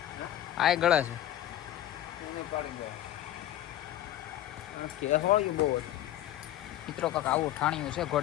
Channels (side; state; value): right; quieter; 12.7 dB